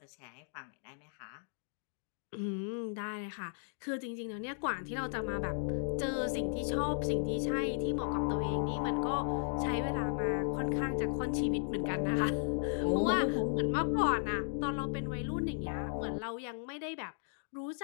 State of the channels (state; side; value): silent; right; digital silence